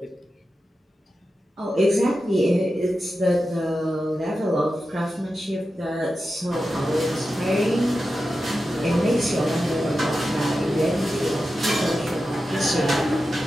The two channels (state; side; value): normal; both; correlation 0.91